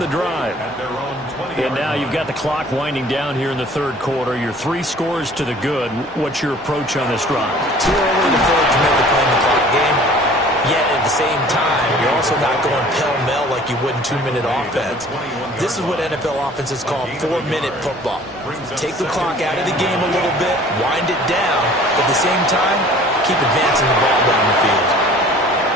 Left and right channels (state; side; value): normal; both; correlation 0.50